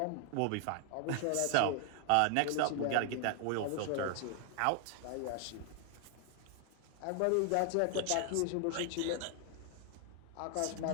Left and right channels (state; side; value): different; both; correlation 0.00